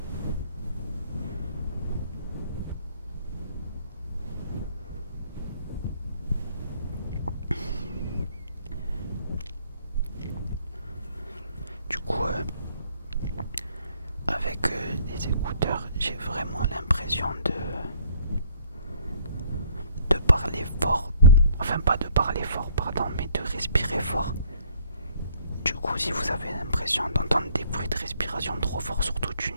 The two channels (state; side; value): inverted; both; correlation -0.60